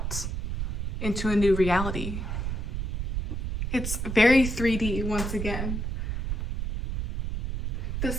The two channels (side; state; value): right; noise; rumble, 1 dB below the sound